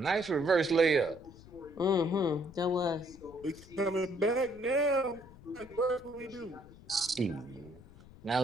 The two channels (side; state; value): left; noise; rumble, 21 dB below the sound